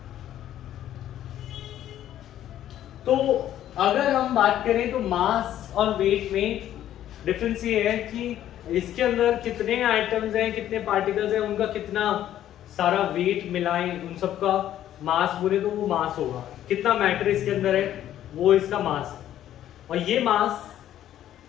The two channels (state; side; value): quieter; right; 11.8 dB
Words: तो अगर हम बात करें तो मास और वेट में डिफरेंस ये है कि इसके अंदर कितने एटम्स हैं, कितने पार्टिकल्स हैं, उनका कितना सारा वेट मिलाएं, उन सब का मास बोले तो वो मास होगा. कितना मैटर इसके अंदर है वो इसका मास है. और ये मास